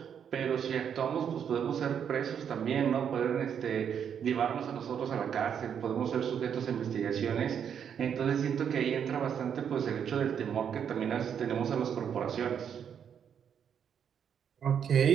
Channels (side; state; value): left; quieter; 8.1 dB